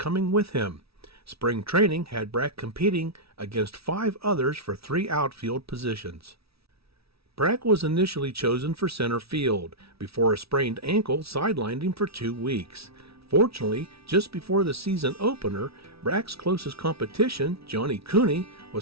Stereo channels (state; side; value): late; left; 0.76 ms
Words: with him. Spring training had Brack competing against 5 others for 3 outfield positions. Brack was initially chosen for center field before a sprained ankle sidelined him for 2 weeks. Fortunately, just before the season opener, Brack's closest competition, Johnny Cooney,